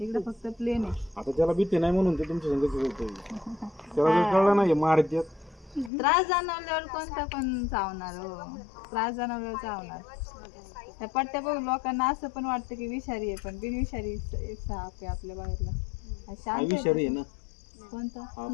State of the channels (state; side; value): drops out; right; at 5.9 s